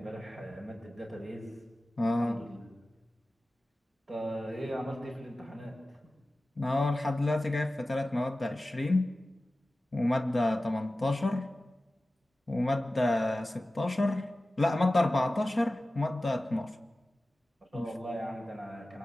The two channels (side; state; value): both; normal; correlation 0.96